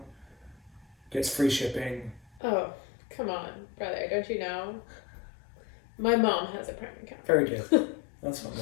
gets free shipping. Oh, come on, brother! Don't you know? My mom has a Prime account. Very good. That's what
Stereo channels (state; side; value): drops out; right; at 2.4 s